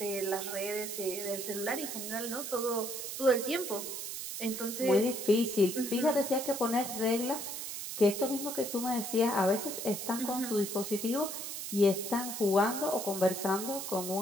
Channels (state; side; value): noise; right; hiss, 6 dB below the sound